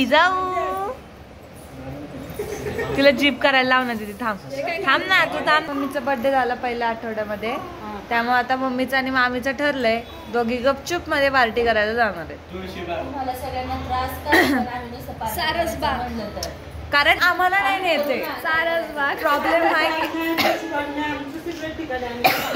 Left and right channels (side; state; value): both; identical; correlation 1.00